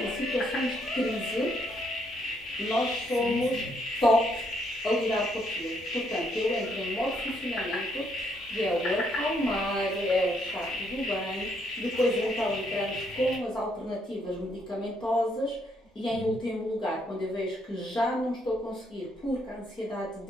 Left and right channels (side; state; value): both; normal; correlation 0.72